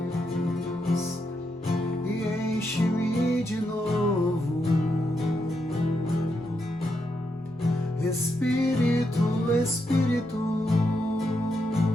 e enche-me de novo. Espírito, Espírito,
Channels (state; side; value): normal; both; correlation 0.82